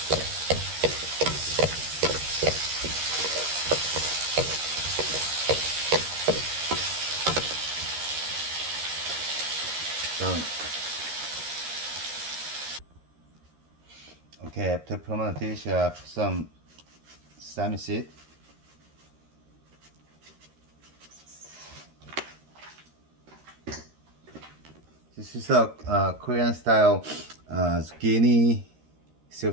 Done. Okay, after putting on the dish, put some sesame seed. This is a Korean style zucchini stir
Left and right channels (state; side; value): late; left; 13 ms